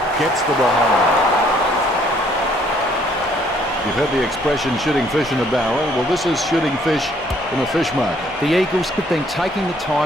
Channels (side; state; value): both; normal; correlation 0.64